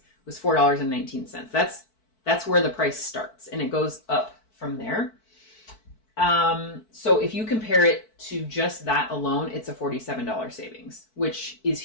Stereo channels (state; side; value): late; right; 4.5 ms